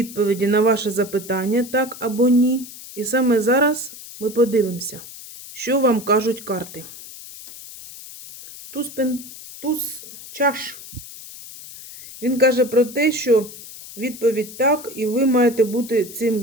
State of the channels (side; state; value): left; noise; hiss, 15 dB below the sound